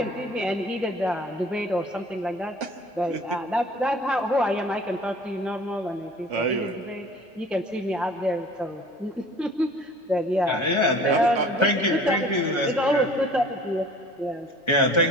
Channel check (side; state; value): both; normal; correlation 0.47